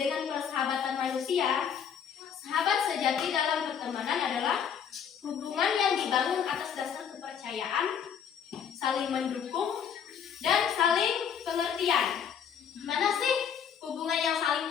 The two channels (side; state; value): right; quieter; 7.9 dB